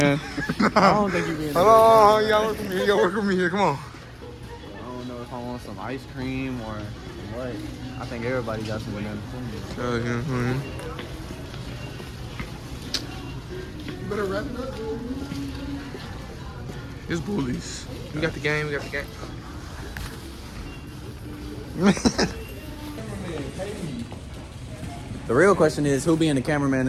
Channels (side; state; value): both; identical; correlation 1.00